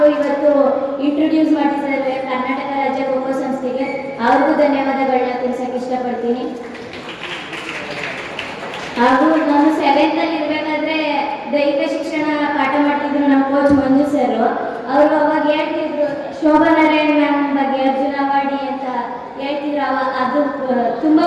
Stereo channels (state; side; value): identical; both; correlation 1.00